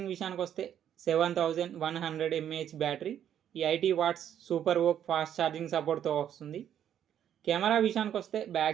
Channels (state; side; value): quieter; left; 9.9 dB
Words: విషయానికి వస్తే 7100 mAh battery, 80 watts super VOOC fast charging సపోర్ట్తో వస్తుంది. కెమెరా విషయానికి వస్తే